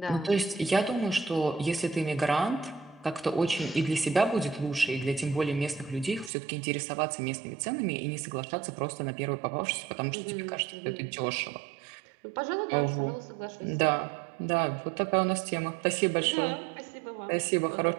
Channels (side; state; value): left; drops out; at 6.3 s